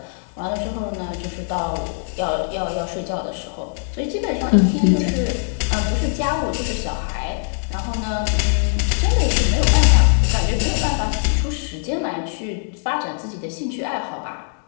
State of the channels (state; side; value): silent; right; digital silence